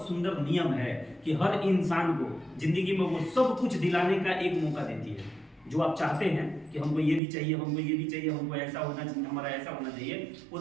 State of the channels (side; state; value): left; drops out; at 7.2 s